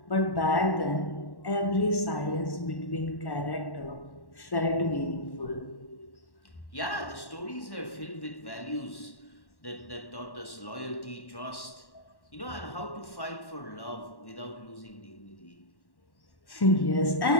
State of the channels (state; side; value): late; right; 1.1 ms